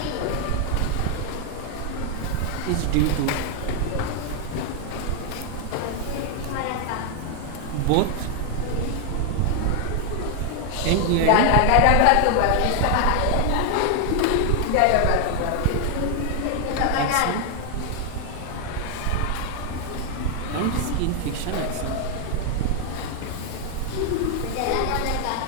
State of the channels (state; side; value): different; both; correlation 0.00